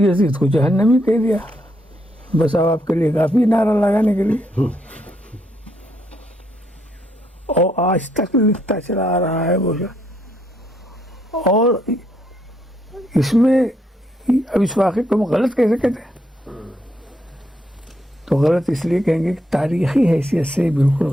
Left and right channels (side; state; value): both; normal; correlation 0.75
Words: یزید کو جہنمی کہہ دیا، بس اب آپ کے لیے کافی نعرہ لگانے کے لیے، اور آج تک لکھتا چلا آ رہا ہے وہ۔ اور اس میں اب اس واقعے کو ہم غلط کیسے کہتے ہیں؟ تو غلط اس لیے کہیں گے کہ تاریخی حیثیت سے بالکل